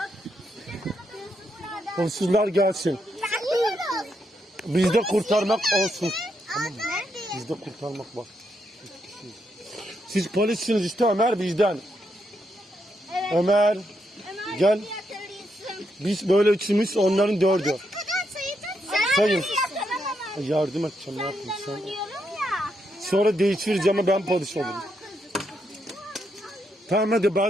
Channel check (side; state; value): both; normal; correlation 0.80